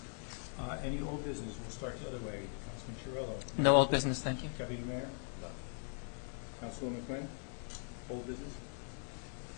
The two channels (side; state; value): right; silent; 51 dB below the other